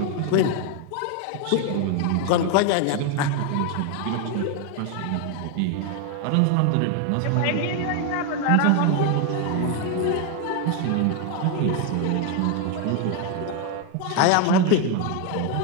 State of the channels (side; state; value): both; different; correlation 0.01